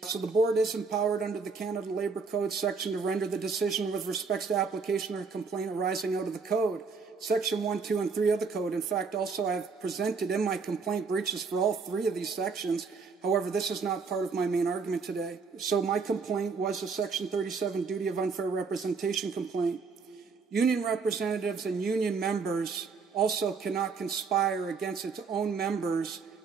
So the board is empowered under the Canada Labour Code section to render the decision with respect to application or complaint arising out of the code. Section 1, 2, and 3 of the code. In fact, also I have presented in my complaint breaches for all 3 of these sections. However, this is not part of my main argument today. So my complaint was a Section 37 duty of unfair representation complaint. Union representatives and union members also cannot conspire against its own members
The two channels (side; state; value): left; quieter; 5.0 dB